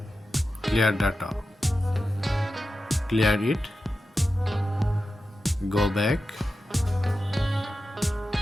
clear data. Clear it. Go back.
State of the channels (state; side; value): normal; both; correlation 0.92